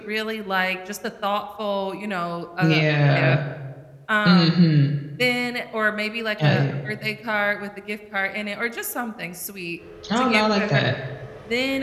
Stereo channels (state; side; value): identical; both; correlation 1.00